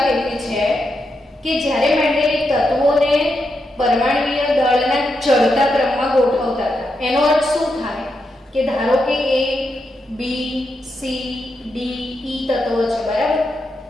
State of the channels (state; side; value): normal; both; correlation 0.84